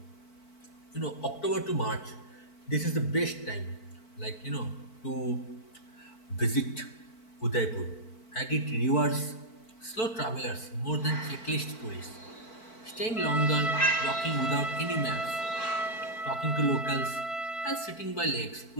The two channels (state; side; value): late; right; 4.5 ms